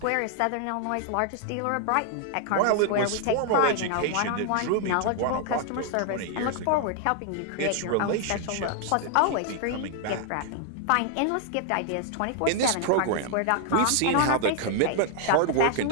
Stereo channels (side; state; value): both; different; correlation 0.00